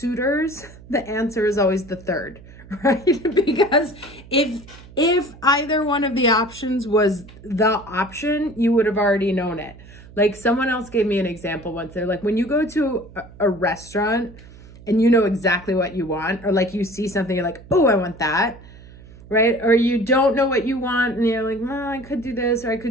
the answer is always the third, right? Because if either one of the options was the option, you would have already known it. Like, someone else gave me an example once. They're like, when you go to a restaurant and you know exactly what you want, or like you see something, you're like, oh, I want that, right? Or you don't know what you want and you're like, well, I could do this or I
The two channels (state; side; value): noise; right; hum, 20 dB below the sound